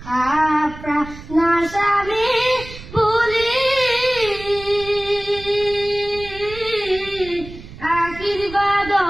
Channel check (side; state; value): right; noise; rumble, 15 dB below the sound